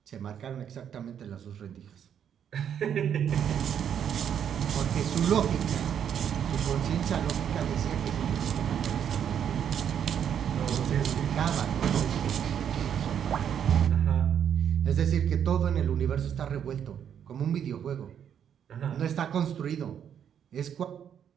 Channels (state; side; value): quieter; left; 8.7 dB